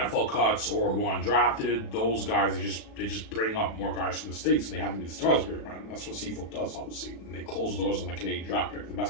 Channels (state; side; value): late; right; 36 ms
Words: cuts or who are undrafted. Those guys, they just bring up more guys from the States and they have to be the stars here, man. That's what CFL does, obviously. And they close the doors on the Canadian draft pick. The